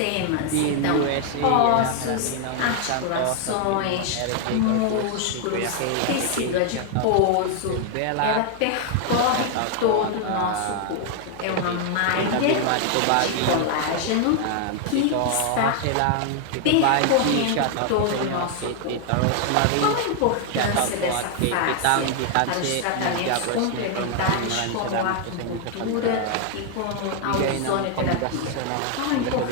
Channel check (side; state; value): both; different; correlation 0.00